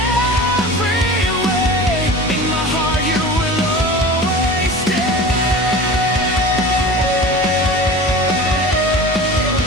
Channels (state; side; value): normal; both; correlation 0.36